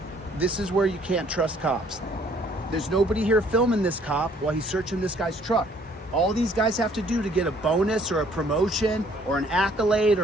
This is where you can't trust cops. There's nobody here filming this cop while he's searching this guy's truck. All these guys have to do to get a bonus or a promotion or an accolade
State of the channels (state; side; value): normal; both; correlation 0.61